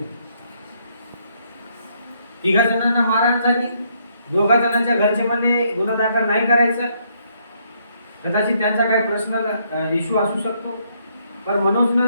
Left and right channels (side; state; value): both; inverted; correlation -0.71